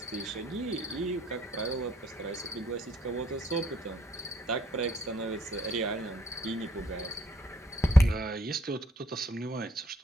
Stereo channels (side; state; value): both; normal; correlation 0.66